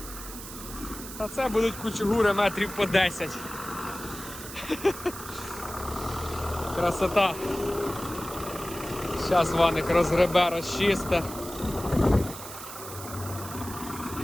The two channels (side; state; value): right; noise; hiss, 12 dB below the sound